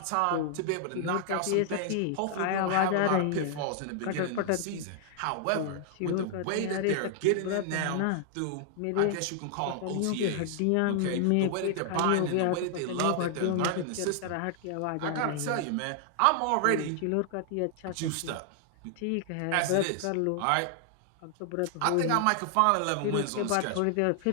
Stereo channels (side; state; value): both; different; correlation 0.00